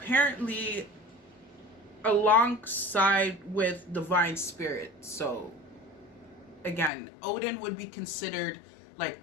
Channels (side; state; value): right; drops out; at 6.9 s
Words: alongside with divine spirit. So again, Odin would be considered like